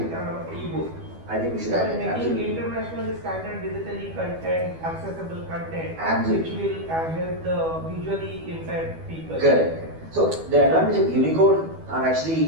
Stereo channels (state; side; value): late; left; 12 ms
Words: I think we should So have it. making Absolutely. international standard digitally content, accessible content, Absolutely. which will help the visually impaired people. Correct. So the advantage of Unicode are